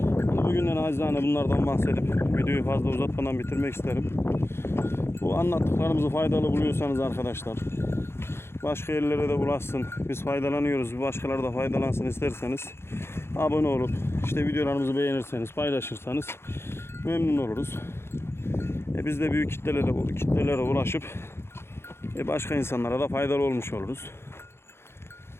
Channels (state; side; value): late; right; 0.12 ms